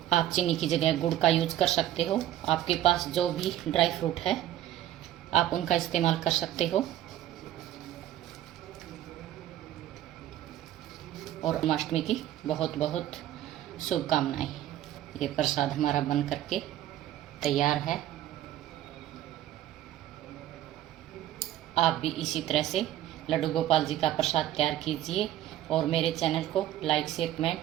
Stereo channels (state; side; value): quieter; left; 12.8 dB